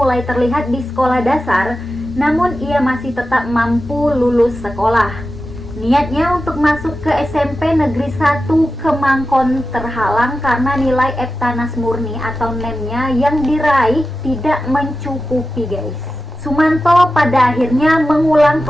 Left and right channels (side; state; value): both; normal; correlation 0.93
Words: terlihat di sekolah dasar, namun ia masih tetap mampu lulus sekolah. Niatnya untuk masuk ke SMP Negeri 1 Kemangkon terhalang karena nilai Eptanas Murni atau NEM-nya yang diraih tidak mencukupi guys. Sumanto pada akhirnya mengulang